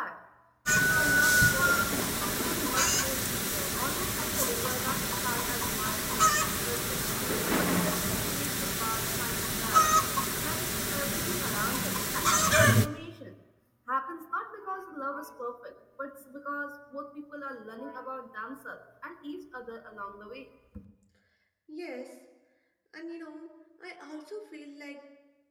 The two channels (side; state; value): both; identical; correlation 1.00